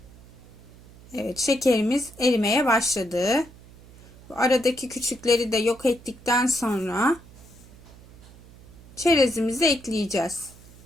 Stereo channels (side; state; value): right; noise; hum, 22 dB below the sound